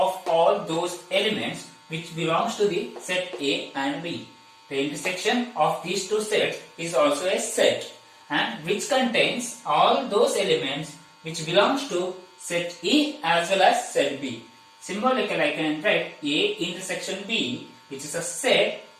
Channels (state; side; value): identical; both; correlation 1.00